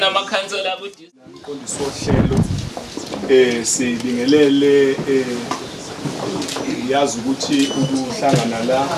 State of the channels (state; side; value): identical; both; correlation 1.00